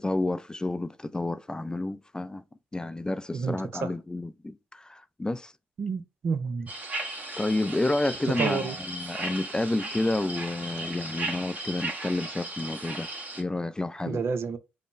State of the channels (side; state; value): both; normal; correlation 0.85